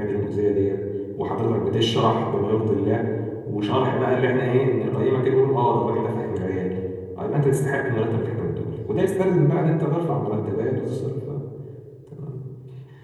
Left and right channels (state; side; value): identical; both; correlation 1.00